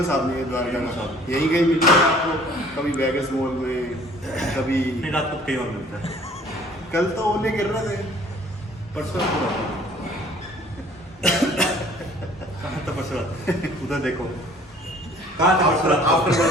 आदमी है द्वारका में। यही कहीं मिलता है आपको, कभी वेगस मॉल में, कभी नहीं रात को कहीं और मिलता है। कल तो ओले गिर रहे थे, परसों कहाँ था परसों रात? उधर देखो कहाँ था परसों रात? आफ्टर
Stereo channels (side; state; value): both; normal; correlation 0.54